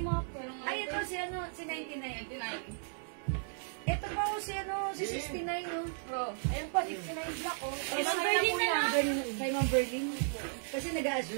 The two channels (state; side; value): silent; left; digital silence